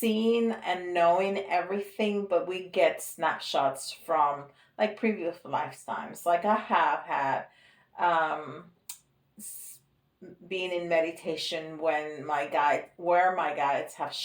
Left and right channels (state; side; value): identical; both; correlation 1.00